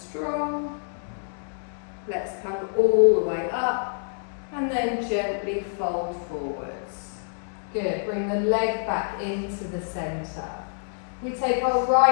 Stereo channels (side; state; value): right; silent; digital silence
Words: Let's come all the way up and then gently fold forwards. Good, bring the leg back into the centre. We take our